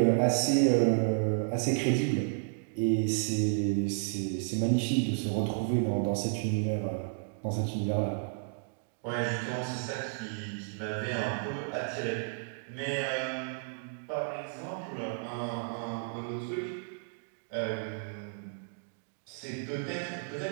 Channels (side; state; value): left; silent; digital silence